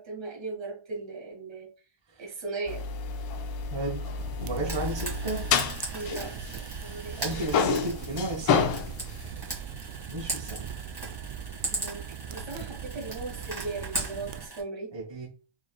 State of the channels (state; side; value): late; left; 1.2 ms